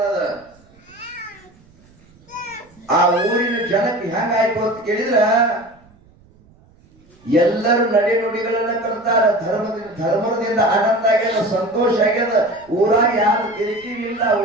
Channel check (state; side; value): noise; right; rumble, 29 dB below the sound